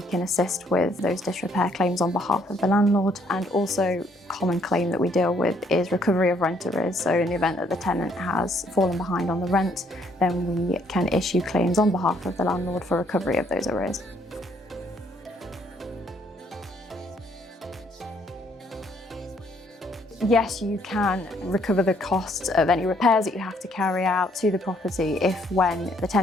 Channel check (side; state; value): both; normal; correlation 0.67